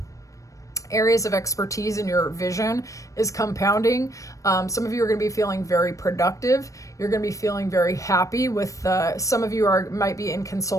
areas of expertise in your vision is compounding. Some of you are going to be feeling very productive. You're going to be feeling very happy with, some of you might be in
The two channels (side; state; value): right; late; 0.16 ms